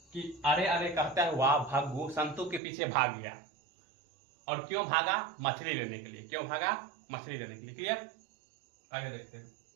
कि अरे अरे कहता हुआ भग्गू संतु के पीछे भाग गया। और क्यों भागा, मछली लेने के लिए। क्यों भागा, मछली लेने के लिए। क्लियर, आगे देखते हैं।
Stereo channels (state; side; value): drops out; left; at 2.6 s